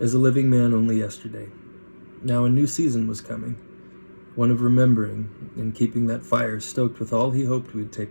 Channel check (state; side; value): inverted; both; correlation -1.00